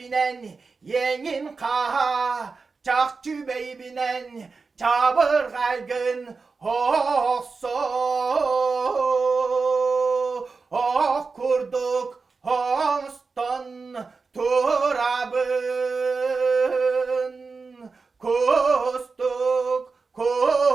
yengin kaha çakçı bey binen çabır kaygın hosso oh kurduk hoston turabın kustuk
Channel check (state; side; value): quieter; left; 4.5 dB